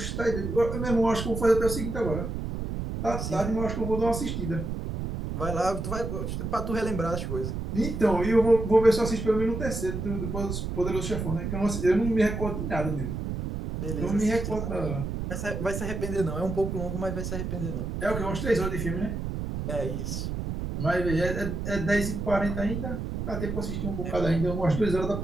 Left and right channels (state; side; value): noise; right; rumble, 4 dB below the sound